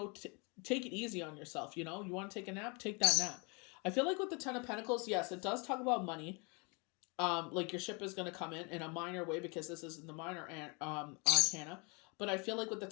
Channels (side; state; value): right; quieter; 31.7 dB